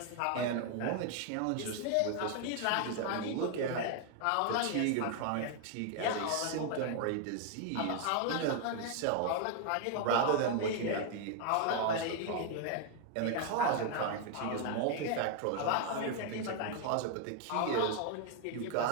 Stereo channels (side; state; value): both; different; correlation 0.00